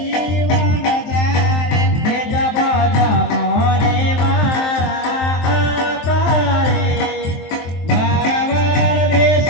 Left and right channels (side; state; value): right; late; 23 ms